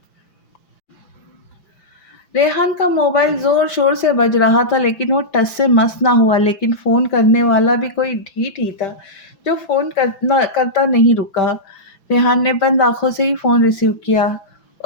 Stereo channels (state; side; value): late; right; 6.0 ms